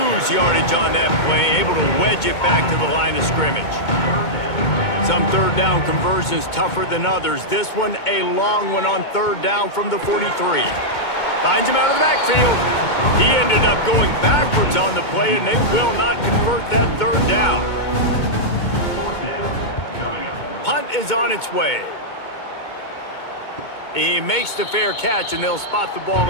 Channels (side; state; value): right; late; 2.2 ms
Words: yardage on that play, able to wedge it back to the line of scrimmage. Some 3rd down conversions tougher than others. This one a long one on 3rd down from the 43. Finds him out of the backfield. He ended up going backwards on the play, and they will not convert that 3rd down. Punt is on its way. He makes the fair catch, and they'll spot the ball